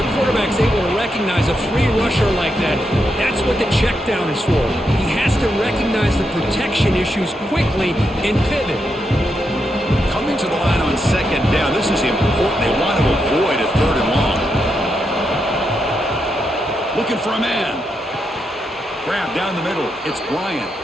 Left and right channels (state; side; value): normal; both; correlation 0.83